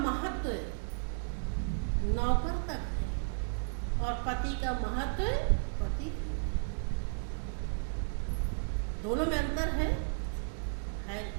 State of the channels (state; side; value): silent; left; 55 dB below the other